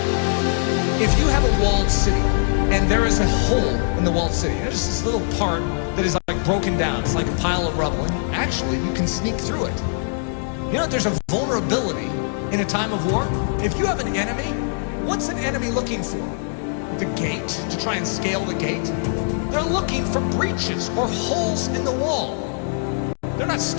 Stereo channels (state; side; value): silent; right; digital silence